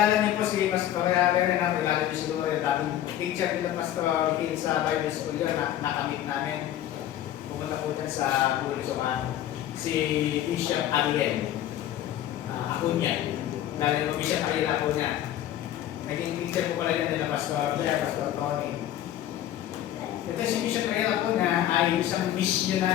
niyo po si Pastor Renan, kilala niyo siguro yung dating teacher nila Pastor Hill sa Bible School yun, nakamit namin. Pumunta po dyan sa Bulusokan. Si Bishop Ariel Acuña. Dahil yung Bishop Ariel Acuña. Naging teacher po pala yan nila Pastor Tony. Ito si Bishop Ariel Acuña ay isang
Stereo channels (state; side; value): quieter; right; 12.1 dB